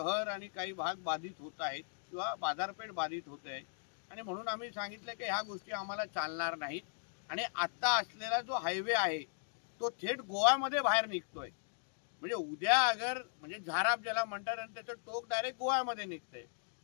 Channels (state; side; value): silent; right; digital silence